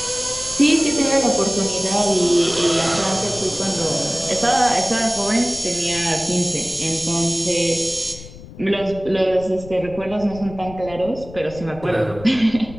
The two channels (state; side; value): noise; left; rumble, 16 dB below the sound